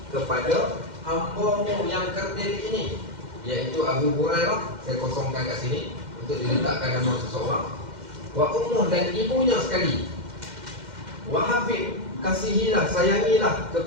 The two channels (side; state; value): left; late; 2.1 ms